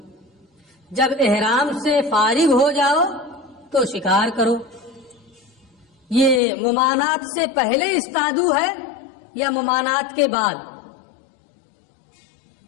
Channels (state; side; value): drops out; right; at 6.4 s